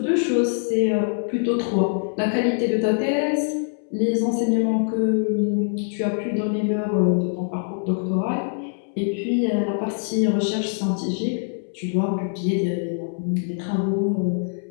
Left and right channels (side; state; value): right; silent; 63 dB below the other